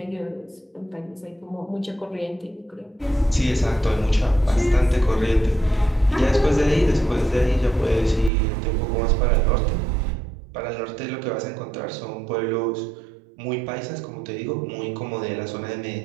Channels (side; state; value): left; drops out; at 8.3 s